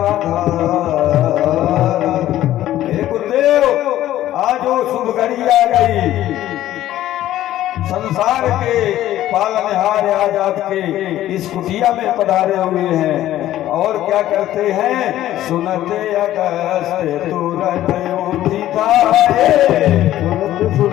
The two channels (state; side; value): quieter; right; 13.5 dB